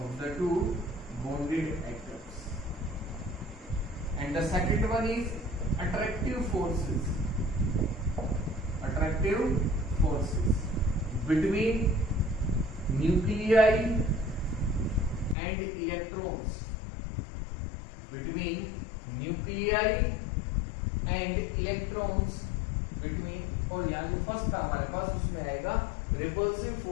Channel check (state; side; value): drops out; right; at 15.4 s